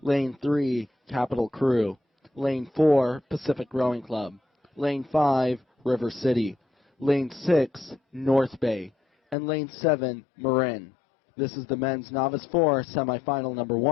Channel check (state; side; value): drops out; right; at 9.3 s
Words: Lane 3, Capital Crew. Lane 4, Pacific Rowing Club. Lane 5, River City. Lane 6, North Bay. And Lane 7, Marin. This is the men's Novice 4 semifinal number